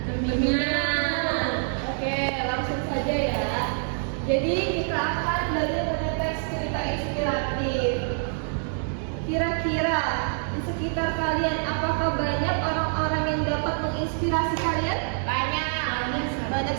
Berminat. Oke, langsung saja ya. Jadi kita akan belajar mengenai teks cerita inspiratif. Kira-kira di sekitar kalian apakah banyak orang-orang yang dapat menginspirasi kalian? Banyak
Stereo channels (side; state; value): left; silent; 61 dB below the other